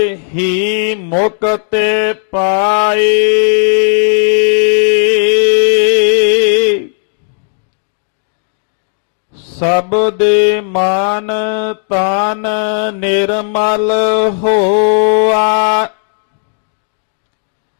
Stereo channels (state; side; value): silent; right; digital silence